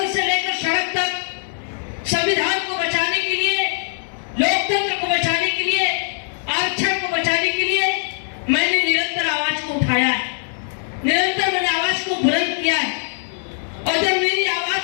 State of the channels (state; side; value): silent; right; digital silence